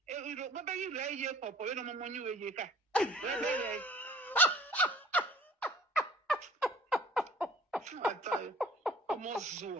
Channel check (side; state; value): both; normal; correlation 0.49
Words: What about you? Lay here, papa. You know, mama, you here. I tell you, I'm all